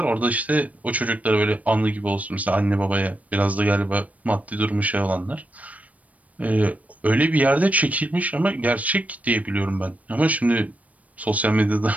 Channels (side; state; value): left; late; 0.069 ms